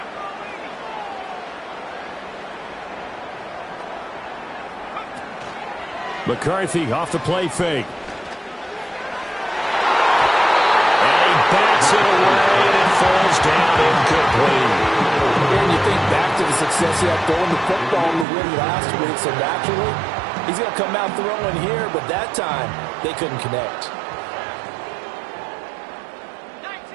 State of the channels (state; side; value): drops out; left; at 18.2 s